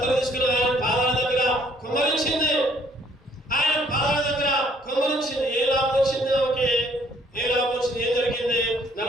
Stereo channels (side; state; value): both; normal; correlation 0.63